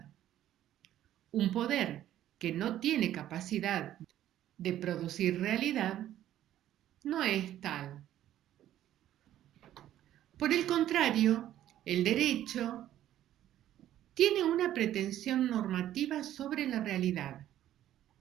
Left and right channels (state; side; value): quieter; left; 12.4 dB